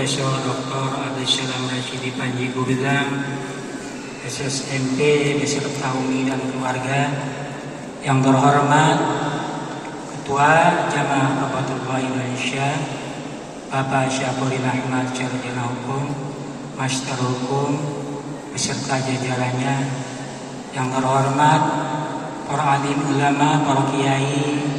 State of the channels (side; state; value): both; identical; correlation 1.00